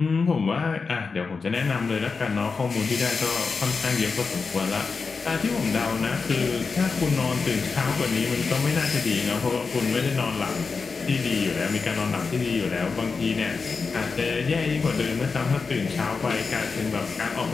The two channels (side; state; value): right; quieter; 4.7 dB